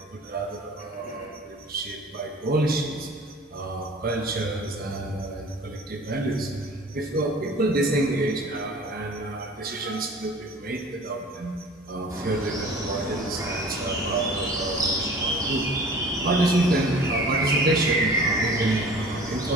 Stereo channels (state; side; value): normal; both; correlation 0.44